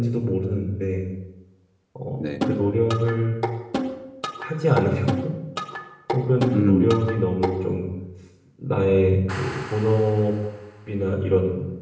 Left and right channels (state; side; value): identical; both; correlation 1.00